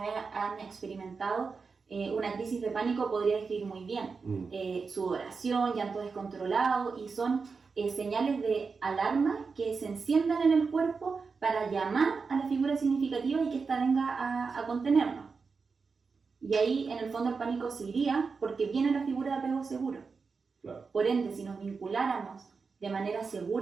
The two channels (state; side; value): quieter; left; 4.9 dB